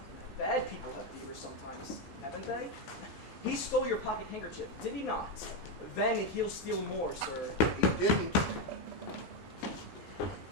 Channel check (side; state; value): both; normal; correlation 0.07